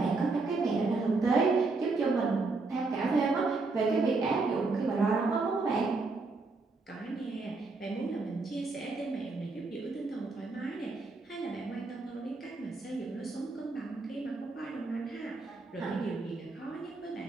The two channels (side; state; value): left; quieter; 3.7 dB